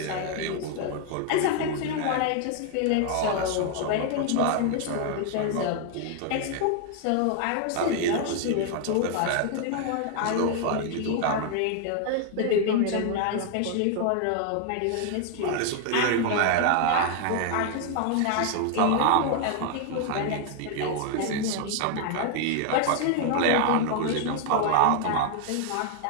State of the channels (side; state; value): both; different; correlation 0.00